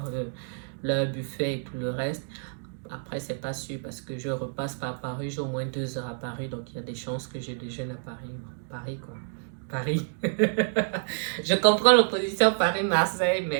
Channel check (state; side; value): silent; left; digital silence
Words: buffet et tout le reste. Après, c'est pas sûr parce que je repasse par Paris, j'ai au moins 2 heures à Paris, donc il y a des chances que je déjeune à Paris. Paris, quoi. Paris. Je comprends l'opposition Paris-Marseille,